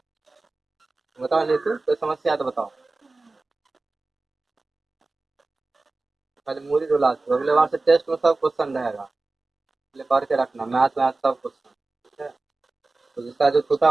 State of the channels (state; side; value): quieter; left; 3.4 dB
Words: बताओ, नहीं तो कोई समस्या है तो बताओ, पहले मूरी रुला दो, अगले बार से टेस्ट में सब क्वेश्चन रहेगा, पहले पढ़ के रखना, मैथ वैथ सब क्वेश्चन, ठीक है। तो जिसका जो छूटा